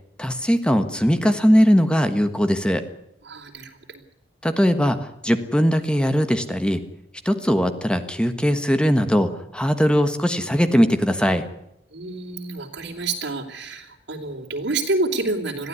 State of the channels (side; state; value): both; normal; correlation 0.89